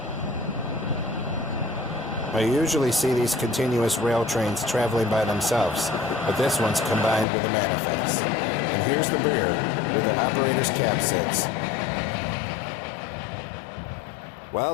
I usually see these continuous rail trains traveling by themselves, but this one's combined with a manifest. And here's the rear, where the operator's cab sits. Well,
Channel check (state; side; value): drops out; right; at 7.2 s